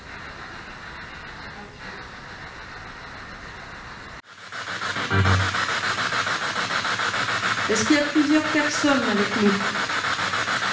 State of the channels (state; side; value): identical; both; correlation 1.00